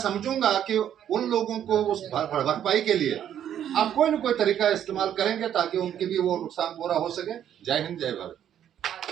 कि उन लोगों को उस भरपाई के लिए आप कोई न कोई तरीका इस्तेमाल करेंगे ताकि उनकी भी वो नुकसान पूरा हो सके। जय हिंद, जय भारत।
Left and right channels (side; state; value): left; quieter; 10.1 dB